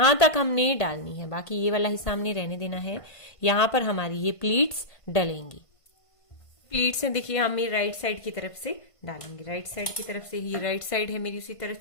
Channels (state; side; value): late; right; 1.5 ms